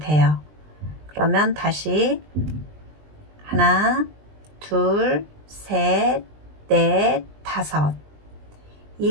그러면 다시 하나, 둘, 셋, 넷, 5.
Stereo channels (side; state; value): left; late; 20 ms